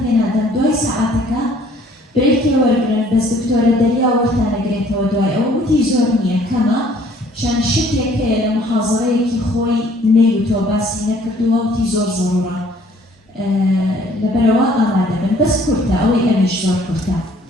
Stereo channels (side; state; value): both; normal; correlation 0.58